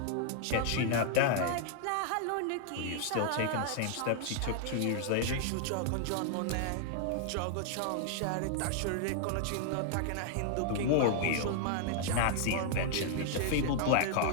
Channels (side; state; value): both; different; correlation -0.01